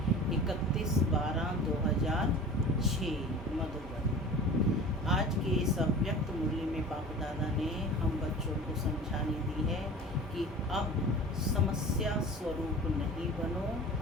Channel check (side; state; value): both; normal; correlation 0.38